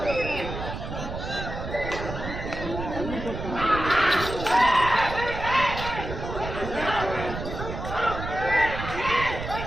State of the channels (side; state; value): right; noise; rumble, 7 dB below the sound